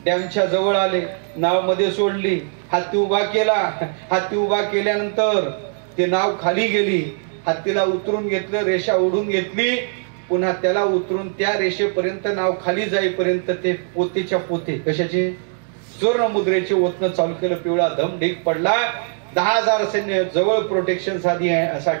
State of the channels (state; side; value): silent; left; 57 dB below the other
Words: डॅमच्या जवळ आले, नाव मध्ये सोडली, हत्ती उभा केला. हत्ती उभा केल्यानंतर ते नाव खाली गेली, हत्तीला उतरून घेतलं, रेषा ओढून घेतली, पुन्हा त्याला उतरून त्या रेषेपर्यंत नाव खाली जाईपर्यंत ते पोतेच्या पोते कशाचे सुवर्ण मुद्रेचे ओतणं चालू केलं. पिवळा धम ढीक पडला. 10,000 सैन्य जवळ प्रोटेक्शन साठी